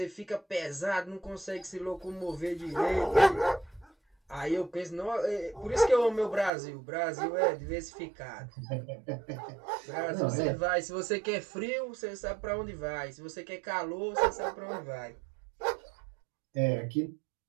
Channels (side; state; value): left; drops out; at 6.5 s